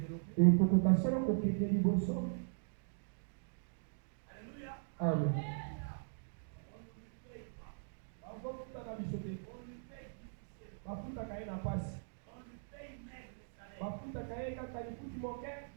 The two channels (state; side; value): silent; left; digital silence